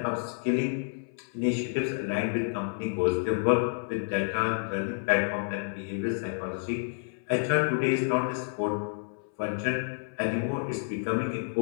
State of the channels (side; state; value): right; silent; 58 dB below the other